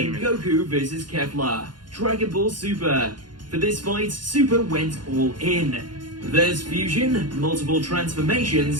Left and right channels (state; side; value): late; left; 0.71 ms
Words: Goku vs. Kefla, Dragon Ball Super. For this fight, Super went all in. There's fusion, multiple